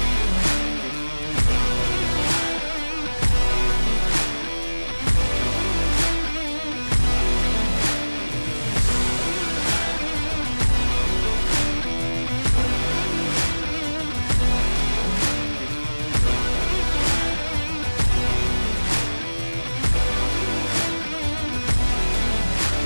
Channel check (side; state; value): both; inverted; correlation -1.00